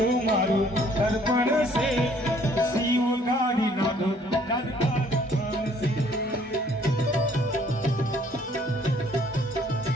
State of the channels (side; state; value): both; normal; correlation 0.60